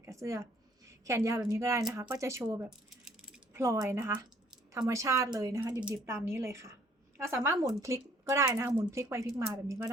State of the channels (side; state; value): both; normal; correlation 0.61